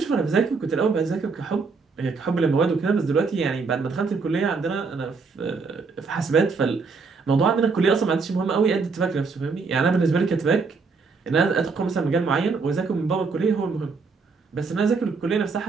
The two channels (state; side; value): quieter; left; 4.7 dB